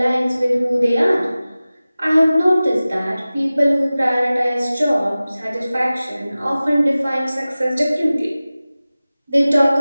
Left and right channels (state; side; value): inverted; both; correlation -0.97